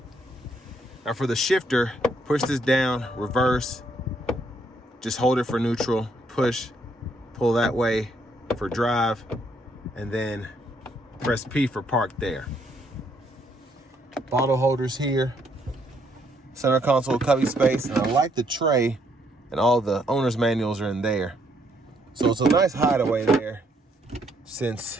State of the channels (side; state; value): both; normal; correlation 0.71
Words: Now for the shifter, push this down, reverse, just hold it for neutral, push, pull that way for drive, and then press P for park there. Bottle holders here, center console cubby space, and I like the tray, and all the owner's manuals are in there. So it's a nice hideaway there,